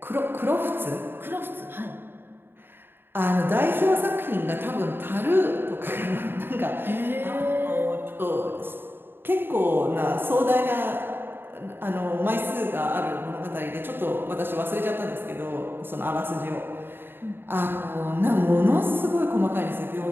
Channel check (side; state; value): left; late; 0.10 ms